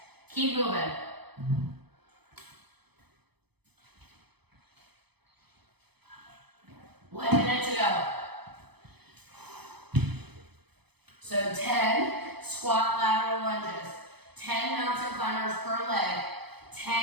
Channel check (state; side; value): late; left; 0.98 ms